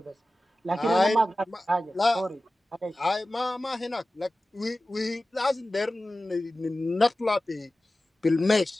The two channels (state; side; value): normal; both; correlation 0.95